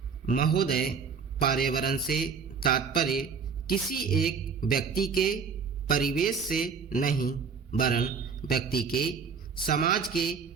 महोदय, पर्यावरण से तात्पर्य किसी एक व्यक्ति के परिवेश से नहीं वरन व्यक्ति के, समाज के,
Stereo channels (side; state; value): left; quieter; 5.9 dB